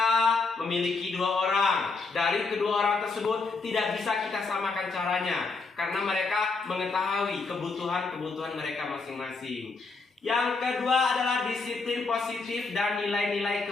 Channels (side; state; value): right; quieter; 4.1 dB